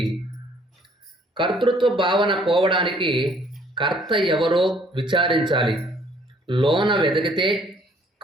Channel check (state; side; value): normal; both; correlation 0.61